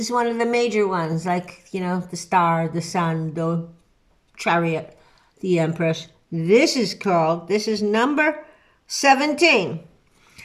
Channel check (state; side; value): identical; both; correlation 1.00